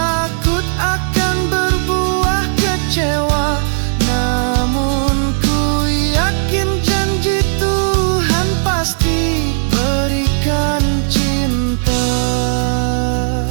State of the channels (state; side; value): silent; left; digital silence